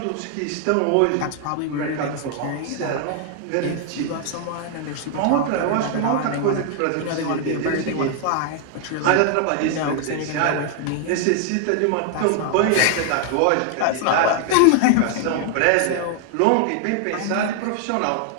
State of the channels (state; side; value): different; both; correlation 0.00